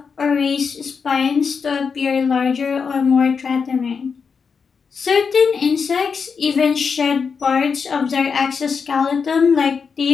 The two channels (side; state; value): right; quieter; 5.8 dB